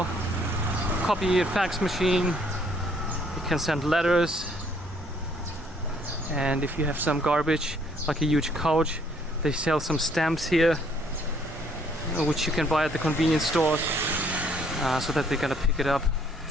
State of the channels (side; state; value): both; normal; correlation 0.64